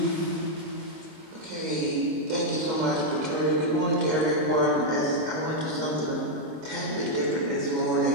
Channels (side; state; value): left; late; 26 ms